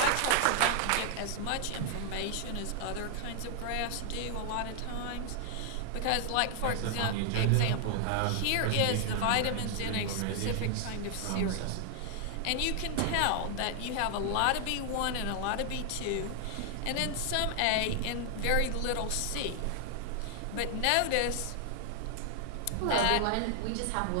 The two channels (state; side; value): different; both; correlation 0.00